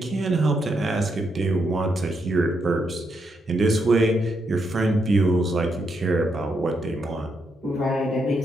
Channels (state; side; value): normal; both; correlation 0.80